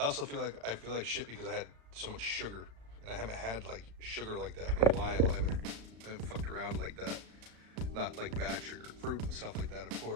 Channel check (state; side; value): late; left; 35 ms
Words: also feel like shit because I had so much sugar, and I haven't had like sugar like that in a while. I haven't fucked around like that. Not like bad sugar, fruit and stuff like that, of